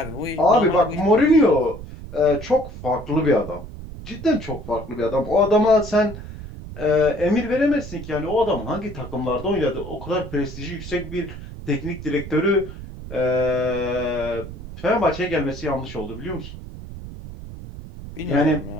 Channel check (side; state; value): right; noise; rumble, 12 dB below the sound